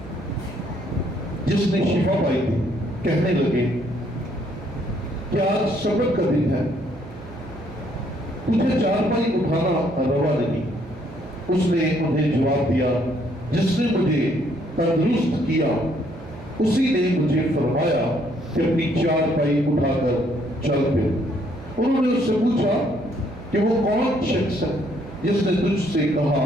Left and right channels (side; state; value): right; noise; hum, 17 dB below the sound